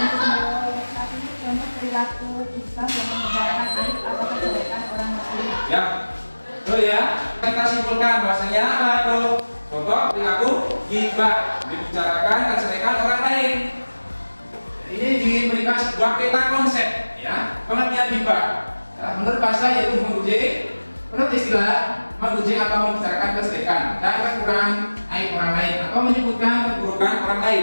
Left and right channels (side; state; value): both; inverted; correlation -1.00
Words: tadi contoh perilaku gibah yang membicarakan aib atau kejelekan orang lain. Ya, betul ya. Kita simpulkan bahwasanya apa tuh? Contoh perilaku gibah membicarakan kejelekan orang lain. Ini diberikan sebuah peta konsep, ya, pengertian gibah. Ya, menurut bahasa yaitu memuji, menurut istilah memuji atau membicarakan kejelekan dan kekurangan aib orang lain atau menyebutkan keburukan orang